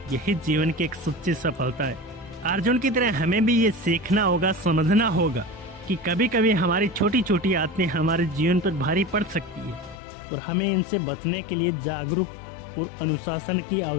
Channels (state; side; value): drops out; right; at 10.0 s